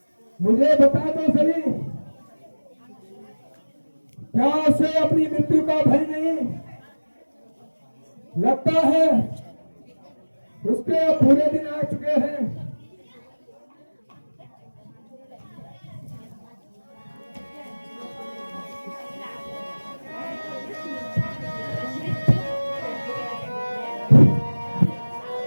मुझे बता तो सही क्या उसे अपनी मृत्यु का भय नहीं लगता है उसके अब बुरे दिन आ चुके हैं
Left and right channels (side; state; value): both; inverted; correlation -1.00